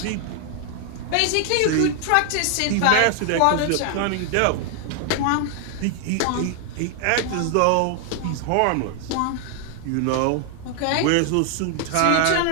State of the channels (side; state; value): both; different; correlation 0.00